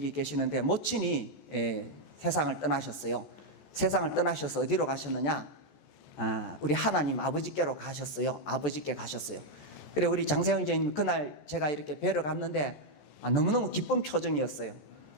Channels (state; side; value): late; right; 14 ms